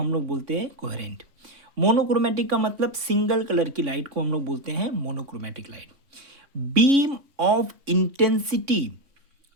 लोग बोलते हैं कोहेरेंट। मोनोक्रोमेटिक का मतलब सिंगल कलर की लाइट को हम लोग बोलते हैं monochromatic light. Beam of intensity,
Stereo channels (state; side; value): late; left; 3.6 ms